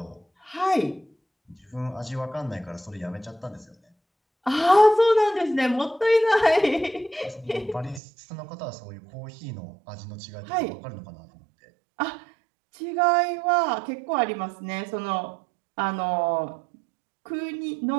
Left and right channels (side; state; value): left; drops out; at 8.0 s